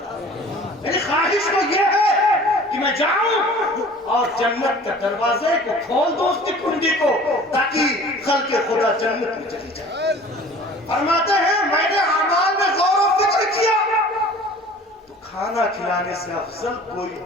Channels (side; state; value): both; normal; correlation 0.46